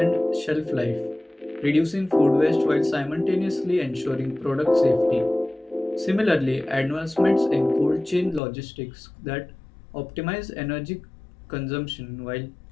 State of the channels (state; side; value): drops out; right; at 8.4 s